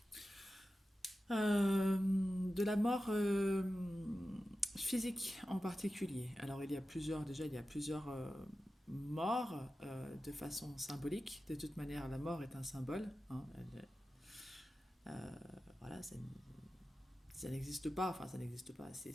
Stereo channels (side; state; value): both; normal; correlation 0.93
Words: De la mort physique en particulier. Alors il y a plusieurs morts de façon symbolique. De toute manière, la mort est un symbole, hein. Voilà, ça n'existe pas, enfin ça n'existe pas.